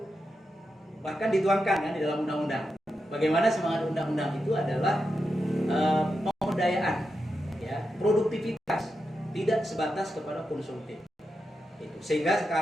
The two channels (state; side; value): normal; both; correlation 0.88